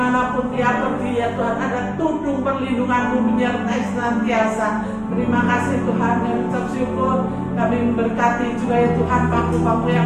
dia pergi ya Tuhan, ada tudung perlindungan-Mu menyertai senantiasa. Terima kasih Tuhan, yang ucap syukur. Kami memberkati juga ya Tuhan bangku-bangku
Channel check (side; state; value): both; identical; correlation 1.00